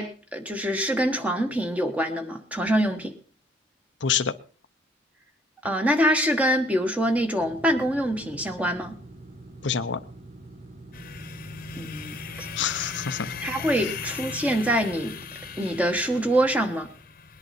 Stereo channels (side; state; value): both; normal; correlation 0.63